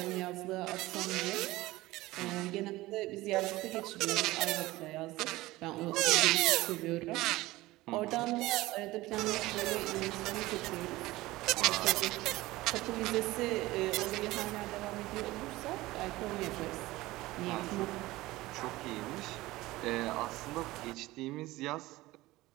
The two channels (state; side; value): quieter; left; 18.7 dB